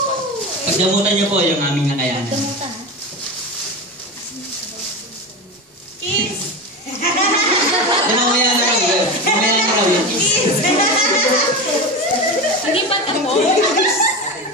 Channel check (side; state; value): both; normal; correlation 0.23